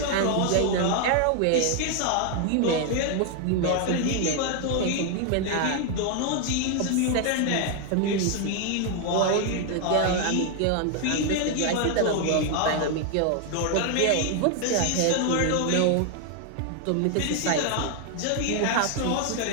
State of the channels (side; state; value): both; different; correlation 0.00